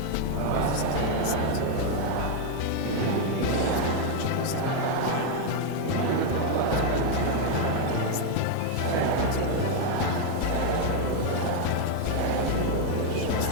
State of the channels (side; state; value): both; different; correlation 0.01